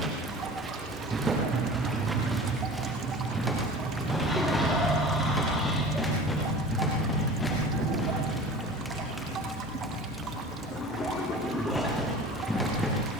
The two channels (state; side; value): normal; both; correlation 0.39